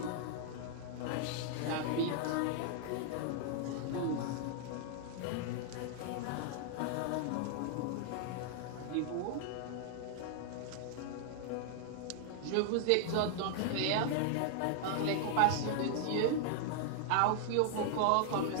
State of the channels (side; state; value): both; different; correlation -0.01